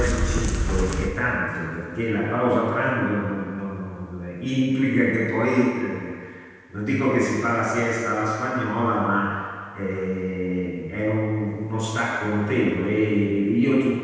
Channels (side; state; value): both; identical; correlation 1.00